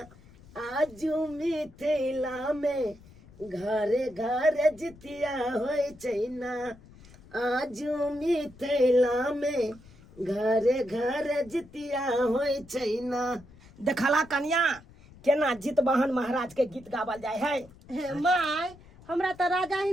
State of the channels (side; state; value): left; noise; rumble, 23 dB below the sound